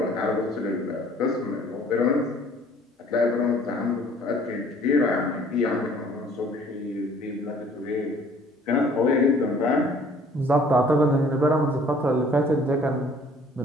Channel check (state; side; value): normal; both; correlation 0.55